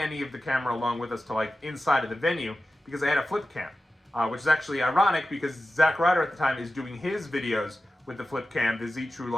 of the camera along with us to like inside of the venue because I had a flip cam, which is actually ironic because Zack Ryder at the time is doing his videos with the flip cam, the Z True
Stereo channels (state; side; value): normal; both; correlation 0.94